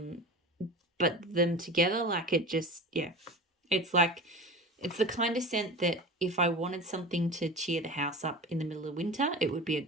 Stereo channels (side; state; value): both; normal; correlation 0.33